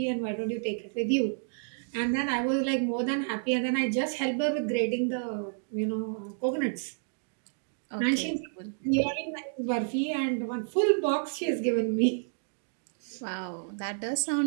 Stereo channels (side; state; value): left; silent; digital silence